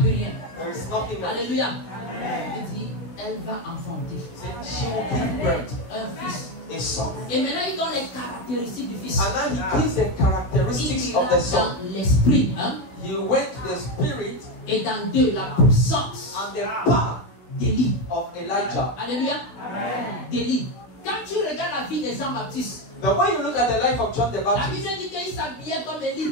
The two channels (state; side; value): late; right; 16 ms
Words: rien. there is nothing else. Alléluia. Il dit, elle va enfanter She will give birth un fils. a son. Et maintenant, il donne les caractéristiques du fils. And now he gives the characteristics Il of ira the son. dans l'esprit, hein, He went to the spirit et dans deux, la puissance and the power d'Élie. of Elijah. Alléluia. D'Élie. Quand tu regardes la vie de Jean-Baptiste, But when you look at the life of John the la Baptist, Bible dit qu'il s'habillait comme